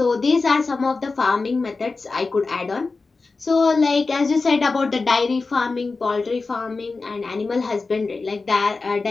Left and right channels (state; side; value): quieter; right; 4.0 dB